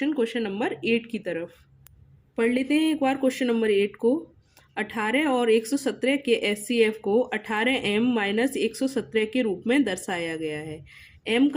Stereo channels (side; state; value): both; identical; correlation 1.00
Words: नंबर 8 की तरफ। पढ़ लेते हैं एक बार क्वेश्चन नंबर 8 को। 18 और 117 के एचसीएफ को 18m माइनस 117 के रूप में दर्शाया गया है। m